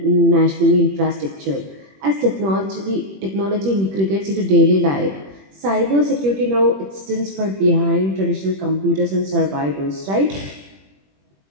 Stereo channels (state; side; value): late; left; 21 ms